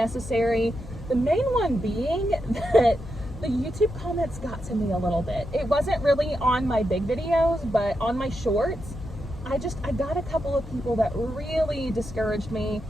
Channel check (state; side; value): noise; left; hum, 14 dB below the sound